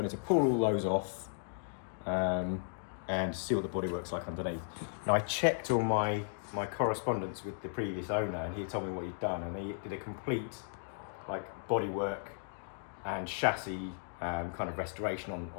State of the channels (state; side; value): silent; right; digital silence